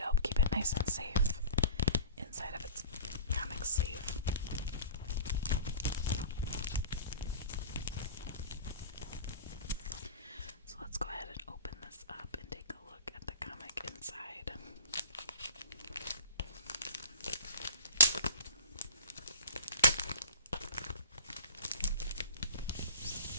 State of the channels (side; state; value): both; inverted; correlation -0.38